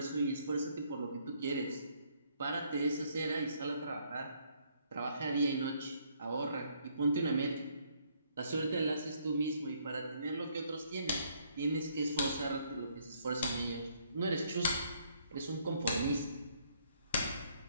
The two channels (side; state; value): both; inverted; correlation -0.68